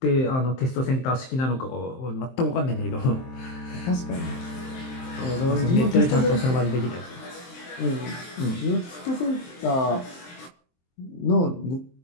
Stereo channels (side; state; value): right; late; 23 ms